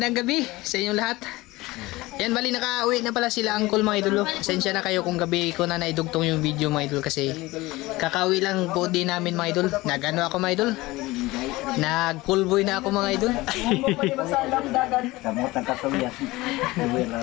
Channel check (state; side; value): quieter; right; 20.1 dB